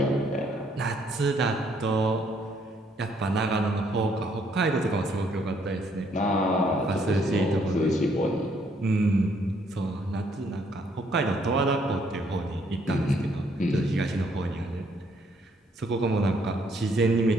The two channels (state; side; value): normal; both; correlation 0.68